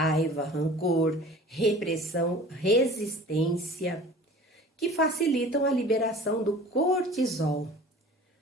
rancor, repressão, resistência, que facilitam a liberação do cortisol,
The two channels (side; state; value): both; normal; correlation 0.43